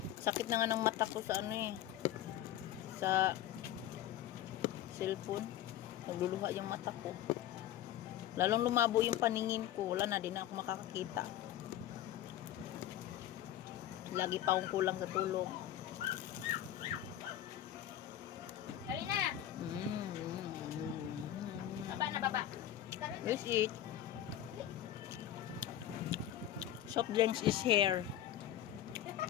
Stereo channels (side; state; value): right; quieter; 11.9 dB